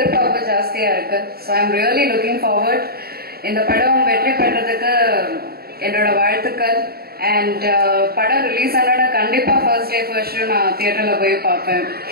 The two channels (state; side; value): late; left; 0.45 ms